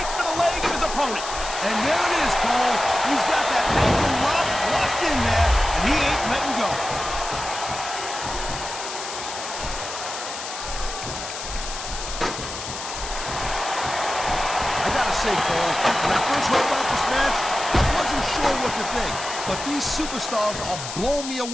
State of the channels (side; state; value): left; noise; hiss, 8 dB below the sound